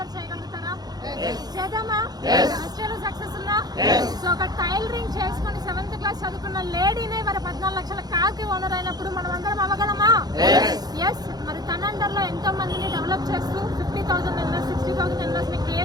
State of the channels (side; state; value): left; late; 0.19 ms